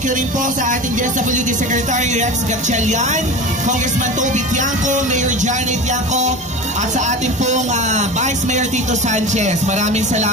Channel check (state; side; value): normal; both; correlation 0.30